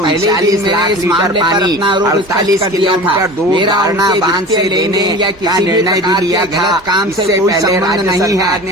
दिन में इस मामले पर अपना आरोप 48 किलोमीटर दूर मेरा बांध से लेने या किसी निर्णय भी लिया गलत काम से कोई संबंध नहीं है।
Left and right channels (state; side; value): normal; both; correlation 0.36